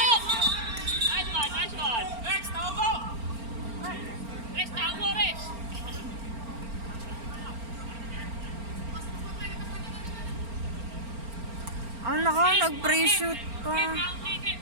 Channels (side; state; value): left; late; 4.4 ms